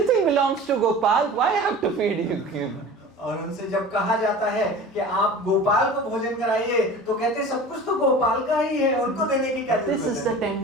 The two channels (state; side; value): normal; both; correlation 0.38